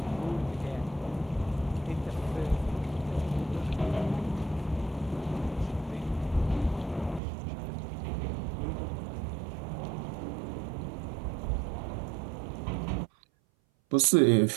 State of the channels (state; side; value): drops out; left; at 7.2 s